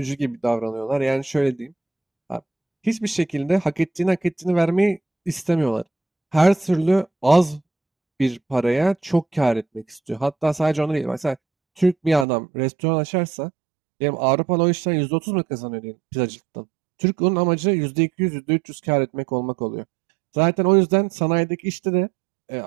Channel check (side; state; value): left; drops out; at 12.2 s